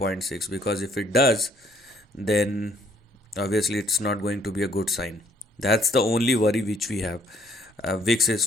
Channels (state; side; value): normal; both; correlation 0.65